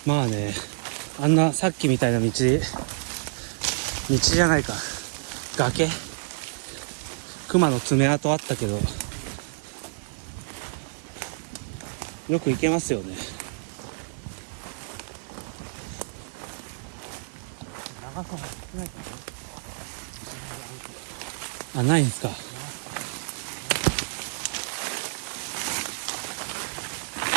まあね、あんなさっきみたいな道じゃないか。崖熊の爪痕あったけど、よく行けますよね。長さも少ないからね。あ、ないんですか。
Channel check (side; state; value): left; silent; digital silence